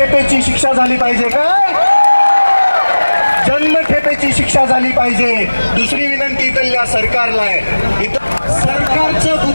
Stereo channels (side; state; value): both; inverted; correlation -1.00